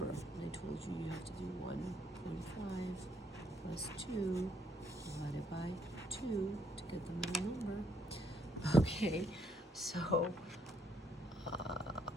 And I told you you have to do 1.5 plus 2 divided by 2 to get the middle number. Okay, so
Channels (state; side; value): normal; both; correlation 0.71